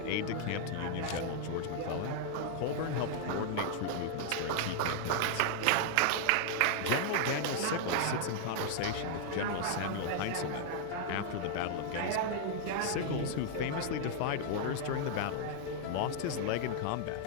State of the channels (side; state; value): both; different; correlation 0.00